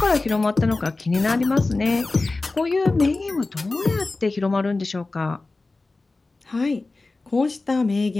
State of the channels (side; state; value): right; quieter; 3.4 dB